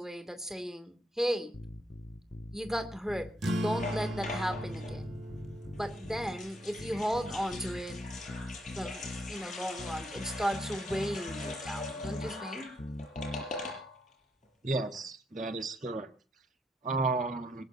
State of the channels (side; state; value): both; normal; correlation 0.76